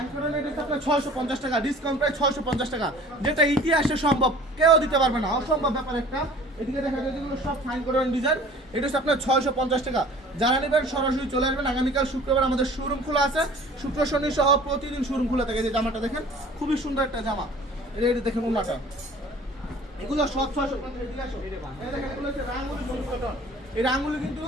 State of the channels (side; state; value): both; normal; correlation 0.47